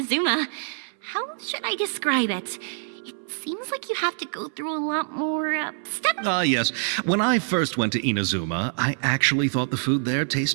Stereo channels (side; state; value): left; silent; 58 dB below the other